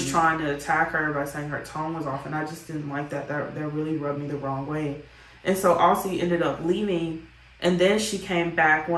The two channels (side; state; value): both; identical; correlation 1.00